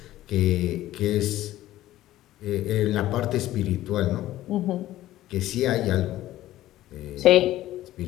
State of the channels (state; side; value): quieter; right; 14.8 dB